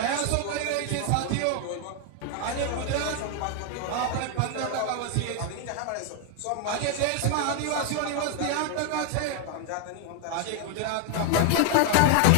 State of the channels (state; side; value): different; both; correlation 0.00